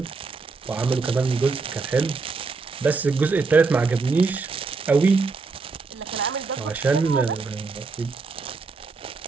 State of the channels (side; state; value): left; quieter; 4.3 dB